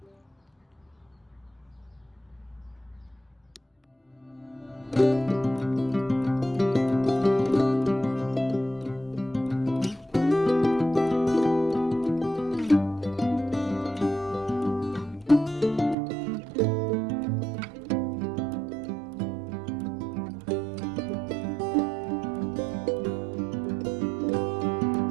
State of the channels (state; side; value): drops out; left; at 16.0 s